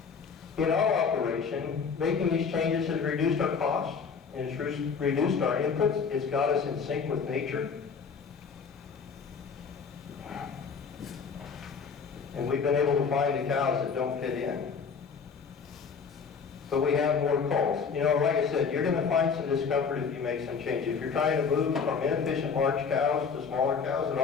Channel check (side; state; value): right; quieter; 5.8 dB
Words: In our operation, making these changes has reduced our costs, and it's reduced our inputs. It's got us in sync with nature. And we've been able to find the cows that don't fit in. But we have more culls. You know, like I said, you're going to find some discomfort if you make some change. If you're trying to move from inefficient large cows to smaller cows that